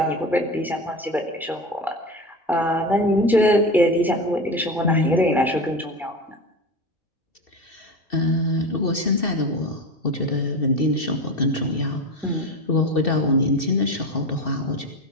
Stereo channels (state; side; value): normal; both; correlation 0.26